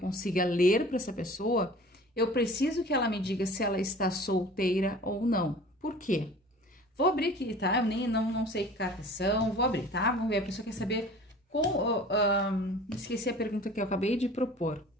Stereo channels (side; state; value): both; normal; correlation 0.44